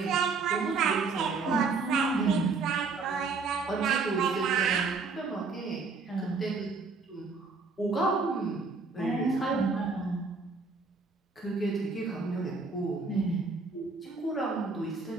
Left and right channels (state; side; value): quieter; left; 4.3 dB